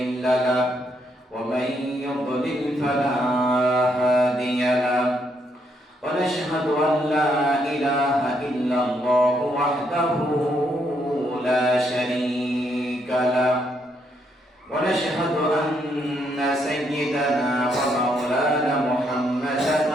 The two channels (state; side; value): normal; both; correlation 0.75